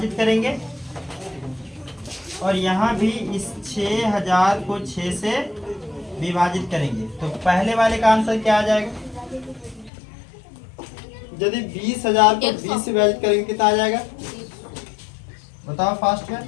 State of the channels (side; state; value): right; drops out; at 9.9 s